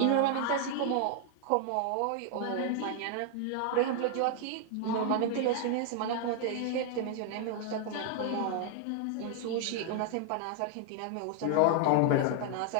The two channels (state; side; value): different; both; correlation 0.00